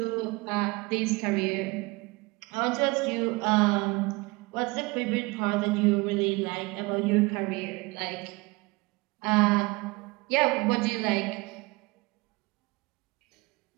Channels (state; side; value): quieter; left; 24.3 dB